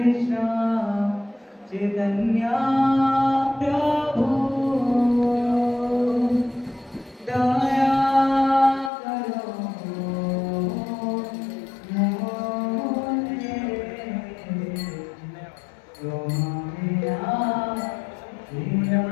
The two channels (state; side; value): drops out; right; at 8.9 s